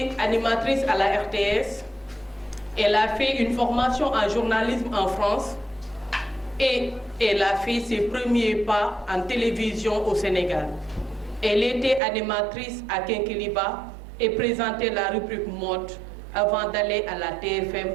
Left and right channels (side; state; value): left; drops out; at 12.0 s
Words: animatrice à la RTS, elle a fait une formation en journalisme en France et elle a fait ses premiers pas en télévision au Sénégal. Elle était animatrice à Kinkeliba et présentait la rubrique mode avant d'aller à la TFM